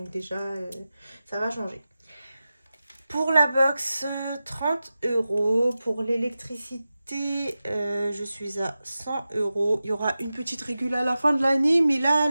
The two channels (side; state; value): both; inverted; correlation -0.94